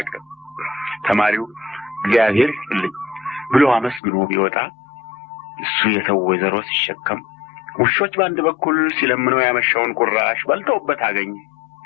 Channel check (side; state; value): right; drops out; at 4.0 s